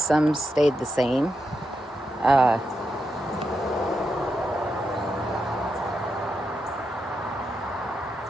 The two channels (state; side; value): normal; both; correlation 0.85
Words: stayed the same.